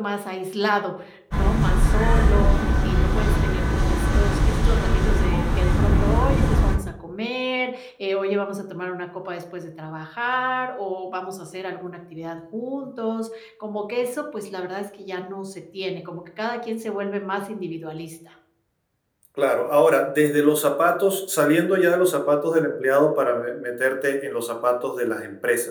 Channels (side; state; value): both; identical; correlation 1.00